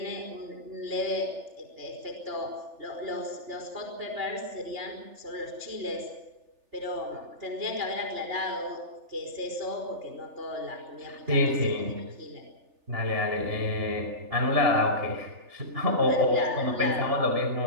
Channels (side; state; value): left; late; 3.4 ms